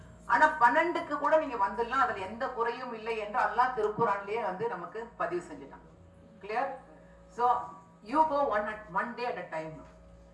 ஆனா 12க்கு கூட நீங்க வந்துடலாம், அதுல எந்த குறையும் இல்லை என்று அல்லாஹ் திருக்குர்ஆன்லயே வந்து நமக்கு பதிவு செஞ்சுட்டான். Clear? So you go one day at a time.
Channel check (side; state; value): both; identical; correlation 1.00